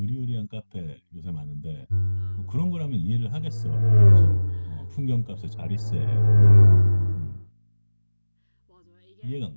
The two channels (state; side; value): inverted; both; correlation -1.00